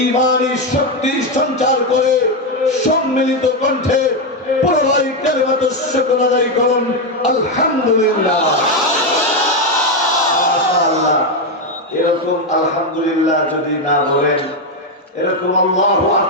শক্তি সঞ্চার করে সম্মিলিত কণ্ঠে পুরোই কালিমাতুশ শুকর আদায় করুন আলহামদুলিল্লাহ। মাশাআল্লাহ। এরকম আলহামদুলিল্লাহ যদি না বলেন, এরকম আল্লাহু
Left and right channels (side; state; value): both; normal; correlation 0.06